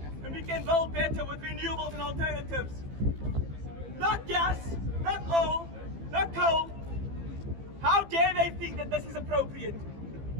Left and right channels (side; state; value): left; late; 15 ms